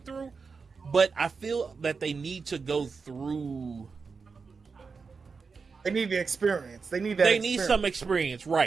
through. But I feel that they need to go through. They need the experience. They need some experience,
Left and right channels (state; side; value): quieter; left; 5.0 dB